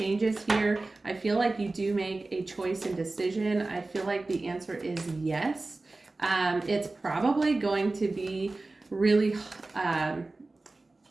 here. I feel like you do make a choice and decision. I feel like the answer is yes. It's probably going to be really,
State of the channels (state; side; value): quieter; left; 3.2 dB